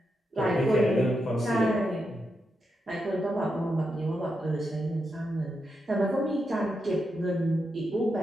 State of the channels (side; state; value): both; normal; correlation 0.85